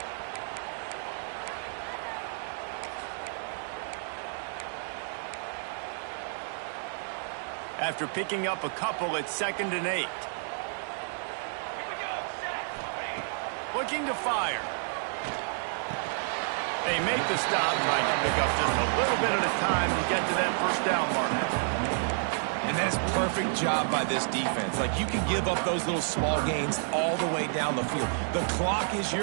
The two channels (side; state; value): left; silent; digital silence